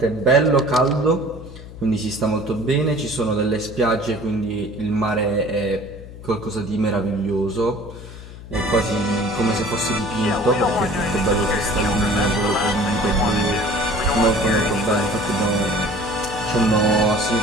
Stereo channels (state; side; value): noise; left; hum, 15 dB below the sound